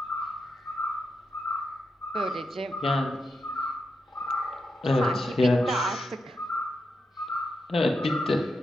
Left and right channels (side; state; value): both; normal; correlation 0.86